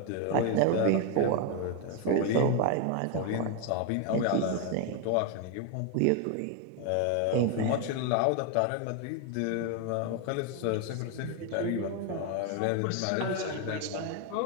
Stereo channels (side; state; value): both; different; correlation 0.01